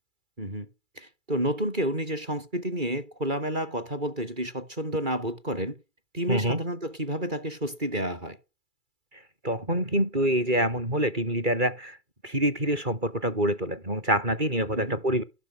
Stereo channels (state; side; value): late; left; 2.3 ms